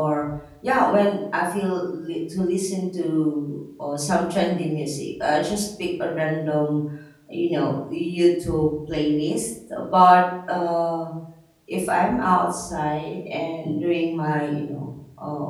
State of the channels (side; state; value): both; identical; correlation 1.00